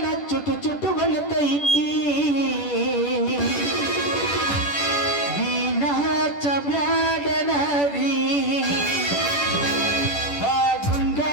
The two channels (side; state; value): right; late; 10 ms